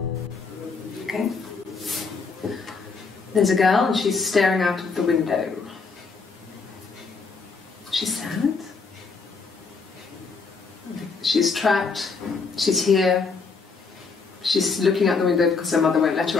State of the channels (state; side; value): quieter; right; 4.6 dB